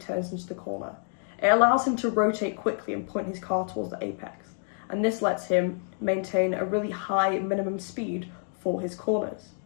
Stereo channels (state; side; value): silent; right; 55 dB below the other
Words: into the corner. It allows him to rotate quickly and point his car towards the apex, and this lets him maintain a really high minimum speed for his corners.